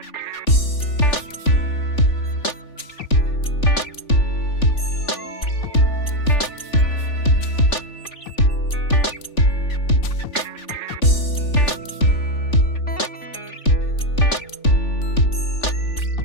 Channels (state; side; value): late; right; 3.4 ms